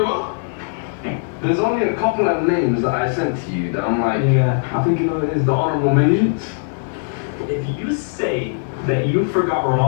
what? There's only a couple of names that I sent to you that I'm like, yeah, I think you know it is the honorable mentions. If you say that you forgot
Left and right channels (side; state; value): right; silent; 66 dB below the other